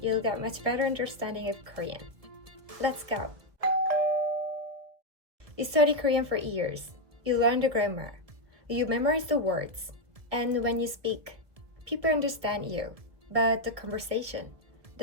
you'll get much better understanding of Korean. Let's go! You study Korean for years, you learn the grammar, you memorize the words, and when you speak, people understand you, but the conversation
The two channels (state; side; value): late; left; 1.8 ms